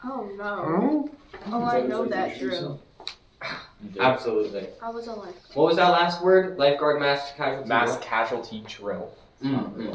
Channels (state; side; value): identical; both; correlation 1.00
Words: Oh no. Oh, I know that drill. Absolutely. I was a lifeguard. What was that last word? Lifeguard mass casualty. Mass casualty drill.